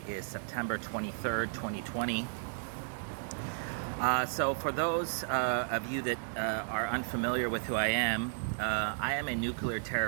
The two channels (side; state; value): left; silent; 55 dB below the other